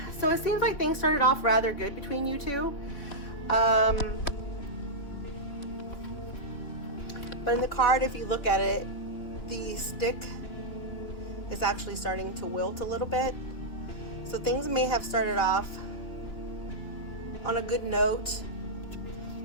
So it seems like things started off rather good between you two. But in the card, if you look at it, the stick is actually starting to wilt a little bit. So things may have started off on a good note,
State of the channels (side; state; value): right; late; 3.7 ms